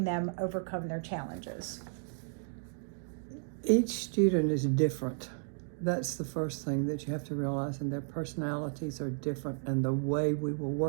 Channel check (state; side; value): silent; left; digital silence